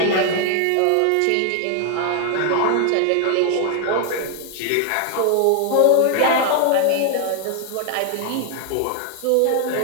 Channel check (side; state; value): both; different; correlation 0.00